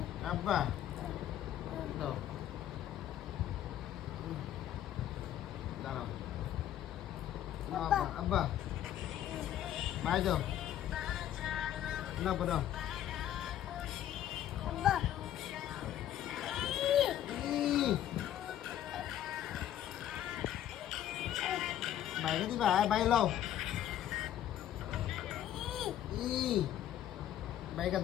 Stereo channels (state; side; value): quieter; right; 11.6 dB